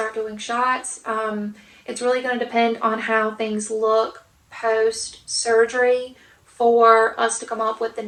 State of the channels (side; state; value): both; identical; correlation 1.00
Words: doing shots. It's really going to depend on how things look post-surgery for us to come up with the